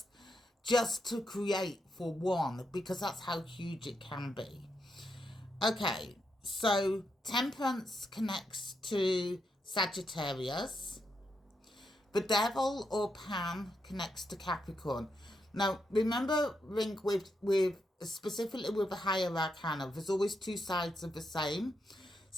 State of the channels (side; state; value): both; normal; correlation 0.82